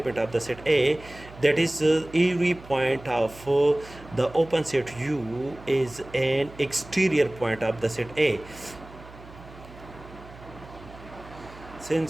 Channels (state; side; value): noise; right; hum, 19 dB below the sound